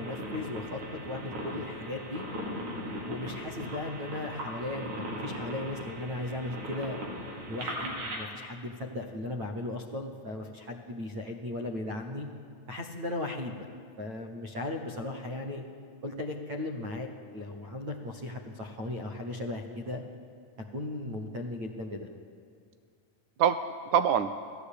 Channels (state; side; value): late; left; 9.1 ms